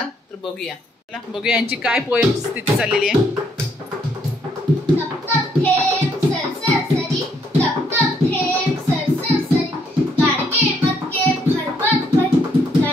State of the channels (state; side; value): normal; both; correlation 0.70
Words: तर बघूया यांची काय पोएम स्थिती चाललेली आहे.